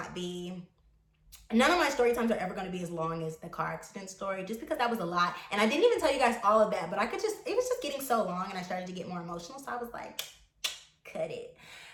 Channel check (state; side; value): identical; both; correlation 1.00